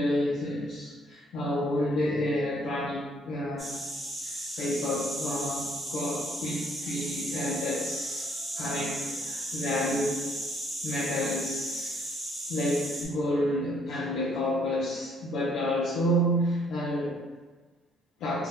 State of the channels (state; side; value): normal; both; correlation 0.65